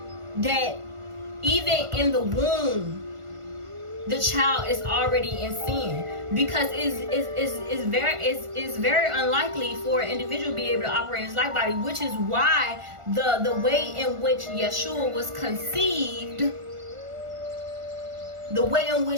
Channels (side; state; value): left; late; 1.4 ms